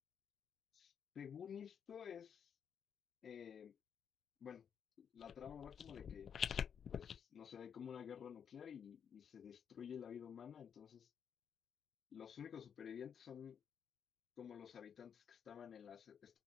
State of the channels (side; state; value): right; quieter; 7.7 dB